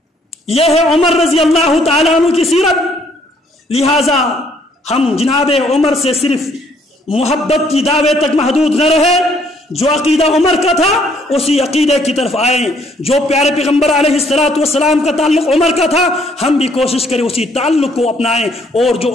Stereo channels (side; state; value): both; normal; correlation 0.65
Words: یہ ہے عمر رضی اللہ تعالیٰ عنہ کی سیرت۔ لہٰذا ہم جناب عمر سے صرف محبت کی دعوے تک محدود نہ رہے، جو عقیدہ عمر کا تھا اسی عقیدے کی طرف آئیں، جو پیارے پیغمبر علیہ السلام کا تعلق عمر کا تھا ہم بھی کوشش کریں اسی تعلق کو اپنائیں، اور جو